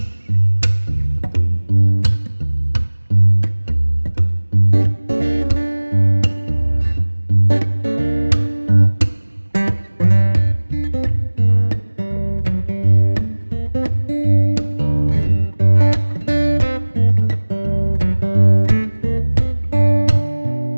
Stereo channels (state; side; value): inverted; both; correlation -1.00